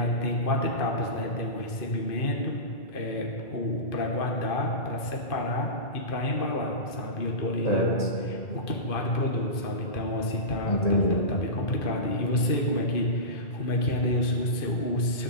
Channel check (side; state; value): right; late; 2.5 ms